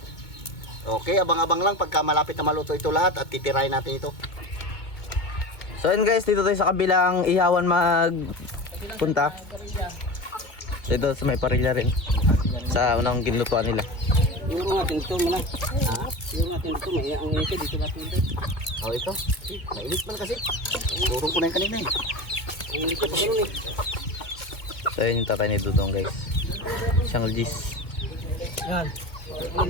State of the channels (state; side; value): late; right; 2.2 ms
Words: Okay, abang-abang lang pagka malapit na maluto ito lahat at titirahin natin ito. So yun guys, dito tayo sa kabilang ihawan magpunta. Dito sa may parilla rin. Sa unang ginlutuan nila. Siguro natin ito muna. Ha? Siguro natin ito. May ang ito. Dito natin ito. Oh, ito. Mainit man kasi. Turong ko na yung kanina eh. Ang ito pa rin eh. So yun yung tatay ni Dudong guys. Siyang Gis. Yan. Ang